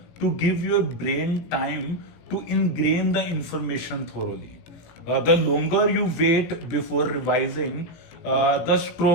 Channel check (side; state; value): right; late; 17 ms